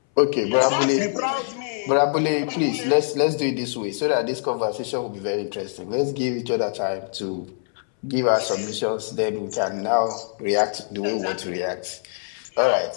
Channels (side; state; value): right; silent; 63 dB below the other